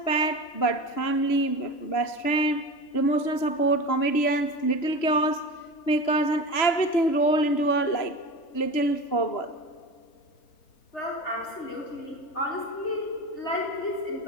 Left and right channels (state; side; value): late; right; 3.1 ms